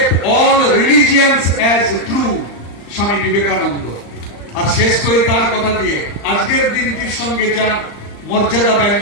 all religions as true, Swami Vivekananda. আর শেষ করে তার কথা দিয়ে আজকের দিনটির সঙ্গে যা মর্যাদা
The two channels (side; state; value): right; late; 35 ms